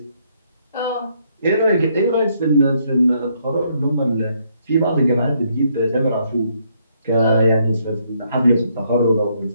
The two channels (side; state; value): both; inverted; correlation -0.72